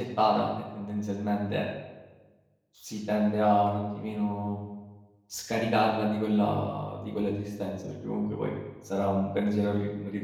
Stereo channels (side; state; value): both; identical; correlation 1.00